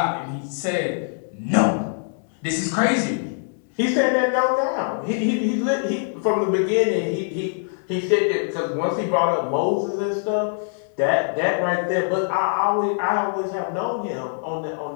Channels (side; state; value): right; silent; 63 dB below the other